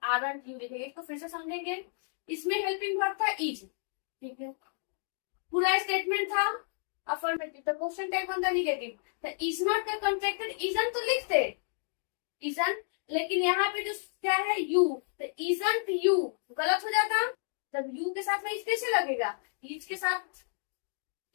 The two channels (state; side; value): silent; right; 57 dB below the other